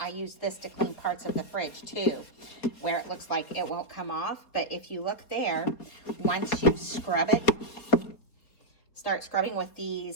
use this to clean parts of the fridge too, where it looks like it won't come off. But if you look there, once you scrub it, start scrubbing with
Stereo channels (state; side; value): late; right; 4.1 ms